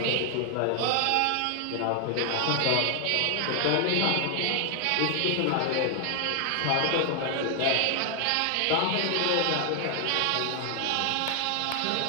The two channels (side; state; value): both; different; correlation 0.00